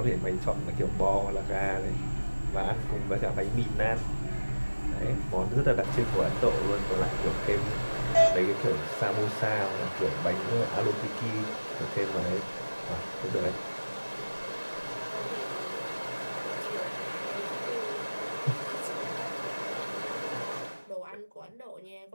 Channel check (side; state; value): both; inverted; correlation -1.00